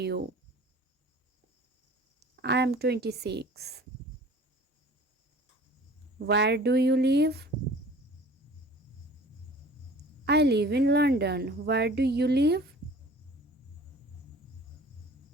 you? I am 26. Where do you live? I live in London. Where do you live?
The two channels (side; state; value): both; normal; correlation 0.46